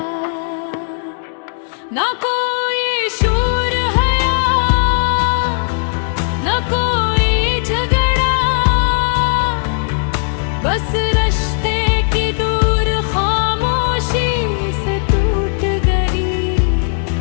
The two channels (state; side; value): silent; right; digital silence